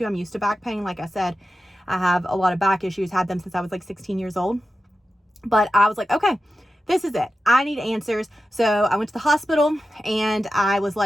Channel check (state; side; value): normal; both; correlation 0.92